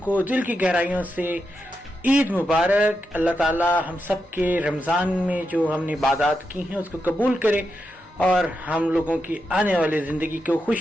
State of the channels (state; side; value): normal; both; correlation 0.86